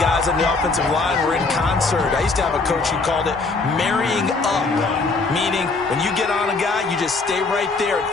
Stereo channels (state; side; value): quieter; right; 3.9 dB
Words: on the offensive line were in concert. I used to have a coach who called it marrying up, meaning when you get on a guy, you just stay right there, and